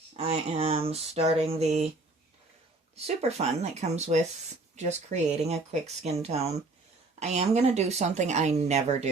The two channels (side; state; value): left; quieter; 3.3 dB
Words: I am starting the super fun that comes with just creating a quick skin tone. I am going to do something I never